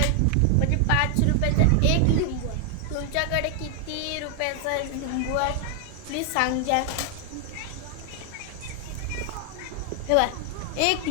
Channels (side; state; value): both; different; correlation 0.00